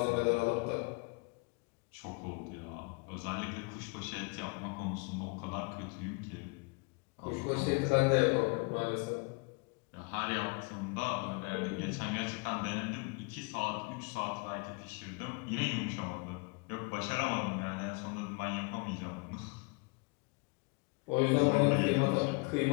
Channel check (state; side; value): quieter; right; 30.3 dB